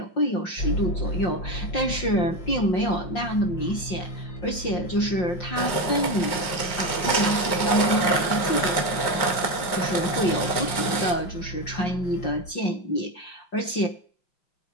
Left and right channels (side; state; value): right; late; 5.7 ms